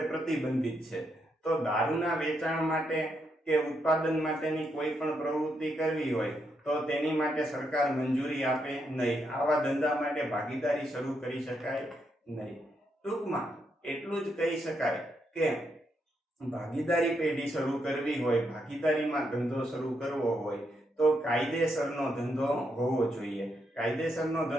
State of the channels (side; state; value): both; normal; correlation 0.80